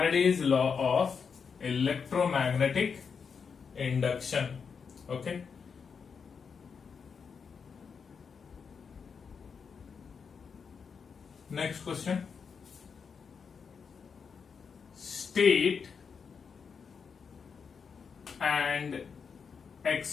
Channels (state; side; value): quieter; right; 6.0 dB